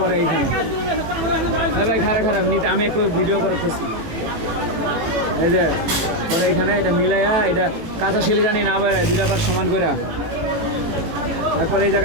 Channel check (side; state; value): left; late; 18 ms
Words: এইখানে। ভাই খারাপ নিতে আমি একটু ভিডিও করে খুশি। এই যে পরে এইখানে এটা মিলাইয়া এটা কাঁচা শিলে জানি না বেড়ায়, দুটা পার সমান করে। তারপরে এই